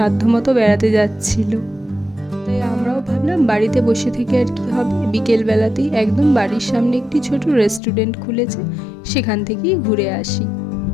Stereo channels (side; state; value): right; drops out; at 7.8 s